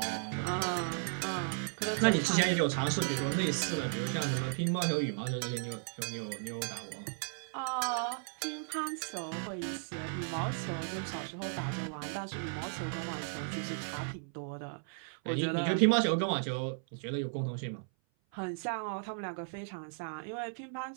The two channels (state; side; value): silent; left; 54 dB below the other